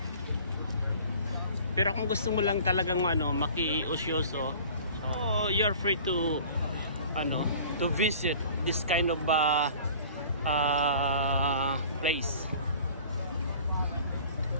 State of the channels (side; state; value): both; inverted; correlation -0.46